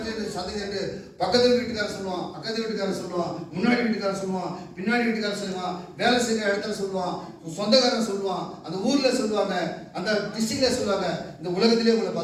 சந்ததி என்று பக்கத்து வீட்டுக்காரர் சொல்லுவான், அக்கத்து வீட்டுக்காரர் சொல்லுவான், முன்னாடி வீட்டுக்காரர் சொல்லுவான், பின்னாடி வீட்டுக்காரர் சொல்லுவான், வேலை செய்கிற இடத்துல சொல்லுவான், சொந்தக்காரன் சொல்லுவான், அந்த ஊர்ல சொல்லுவாங்க, அந்த டிஸ்ட்ரிக்ட்ல சொல்லுவாங்க, இந்த உலகத்திலே உங்களை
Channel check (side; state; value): both; identical; correlation 1.00